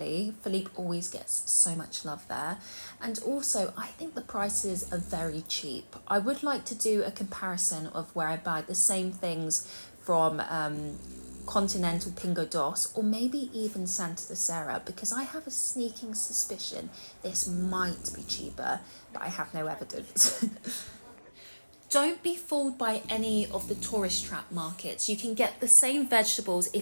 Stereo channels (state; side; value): inverted; both; correlation -1.00